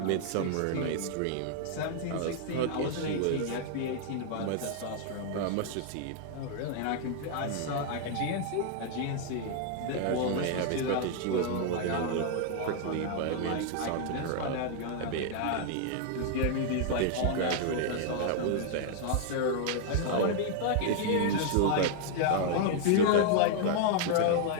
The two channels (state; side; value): different; both; correlation 0.00